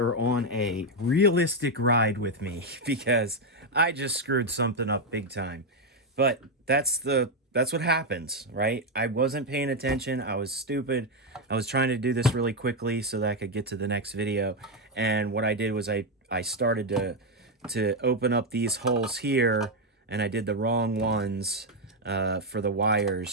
on a realistic ride with me because I just screwed something up big time. But that's what happens, right? I wasn't paying attention. I was stupid. I was trying to do this really quickly so that I could get to the next video. And what I did was I started to open up these holes here, and I did the wrong ones for the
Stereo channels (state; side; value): normal; both; correlation 0.04